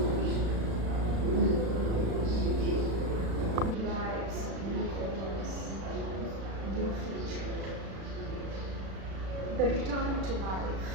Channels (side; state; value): left; late; 36 ms